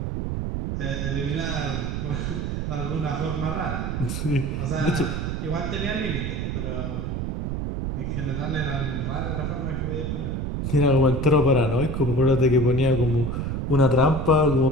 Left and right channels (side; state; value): right; noise; rumble, 2 dB below the sound